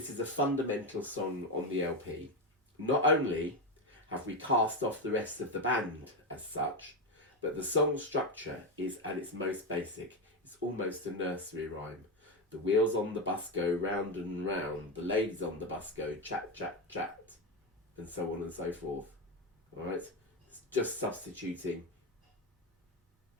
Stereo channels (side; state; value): both; normal; correlation 0.12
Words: is a fundamental song on the LP. Not only have we cast off the rest of the band as such, but the song structure is at its most basic. It's almost a nursery rhyme. The wheels on the bus go round and round, the ladies on the bus go chat, chat, chat, and so on and so forth. All right? It's just substituting,